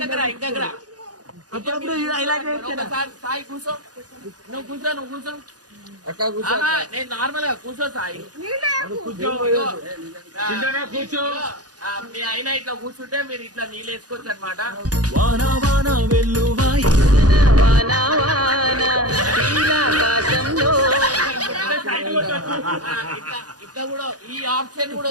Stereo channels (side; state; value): left; late; 0.68 ms